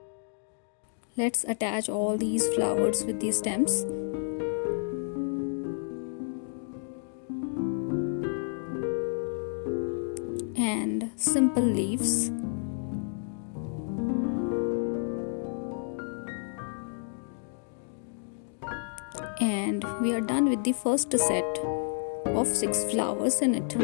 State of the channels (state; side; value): silent; right; digital silence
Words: Let's attach all these flowers with these stems. And simple leaves. And we are done with the first set of 6 flowers in it.